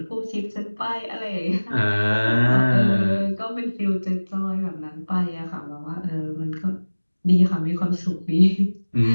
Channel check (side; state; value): both; inverted; correlation -1.00